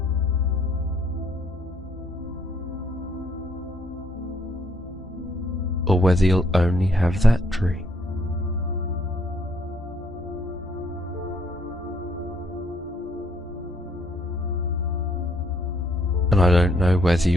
or whether you'll only have that dream. And I don't know whether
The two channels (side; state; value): both; normal; correlation 0.68